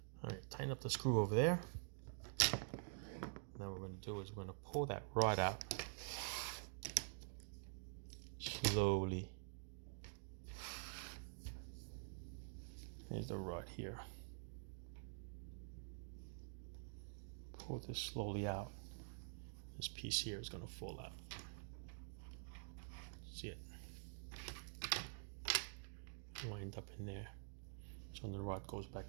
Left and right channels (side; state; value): left; silent; digital silence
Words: All right, tighten up the screw over there. Now what we're going to do is we're going to pull that rod out slowly. Here's the rod here. Pull this slowly out. This piece here is going to fall out. See it? Wind up in there. So the rod goes